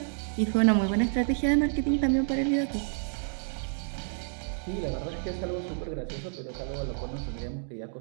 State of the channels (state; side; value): silent; left; digital silence